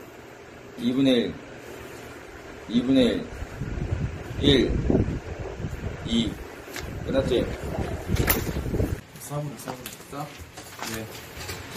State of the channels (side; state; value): both; identical; correlation 1.00